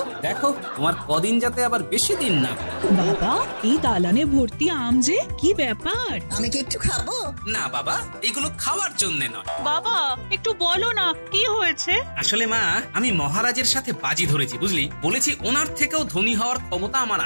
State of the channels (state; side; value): inverted; both; correlation -1.00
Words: দেখো তোমার কদিন যাতে আবার বেশি দিন না। বাবা, এই দালানে ভর্তি আম যে, কি ব্যাপার? আমি কি একটু খাবো? না বাবা, এগুলো খাওয়ার জন্য নয়। বাবা, একটু বলো না কি হয়েছে। আসলে মা, আমি মহারাজের সাথে বাজি ধরেছি, বুঝলি। বলেছি ওনার থেকেও ধনী হওয়ার ক্ষমতা আমার